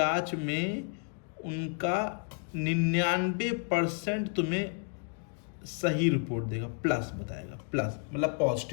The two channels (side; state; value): right; quieter; 38.6 dB